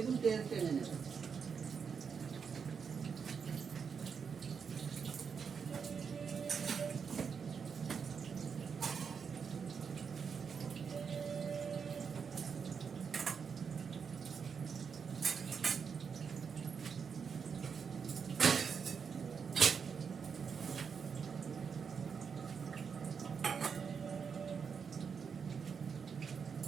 তেল টেনে নেবে।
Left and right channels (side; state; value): left; quieter; 6.3 dB